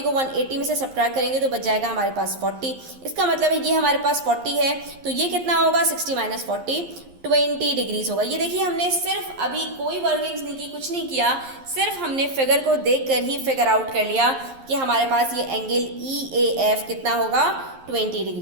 को 180 में से सब्ट्रैक्ट करेंगे तो बच जाएगा हमारे पास 40। इसका मतलब है ये हमारे पास 40 है तो ये कितना होगा? 60 - 40, 20 डिग्रीज होगा। ये देखिए हमने सिर्फ अभी कोई वर्किंग्स नहीं की, कुछ नहीं किया, सिर्फ हमने फिगर को देखकर ही फिगर आउट कर लिया कि हमारे पास ये एंगल EAF कितना होगा, 20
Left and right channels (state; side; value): late; left; 11 ms